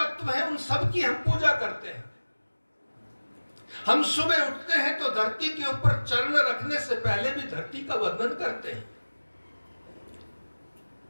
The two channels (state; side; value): inverted; both; correlation -1.00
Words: हैं उन सब की हम पूजा करते हैं। हम सुबह उठते हैं तो धरती के ऊपर चरण रखने से पहले भी धरती का वंदन करते हैं।